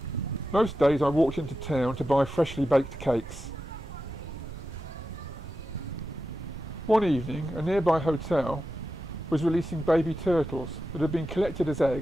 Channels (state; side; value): noise; right; rumble, 12 dB below the sound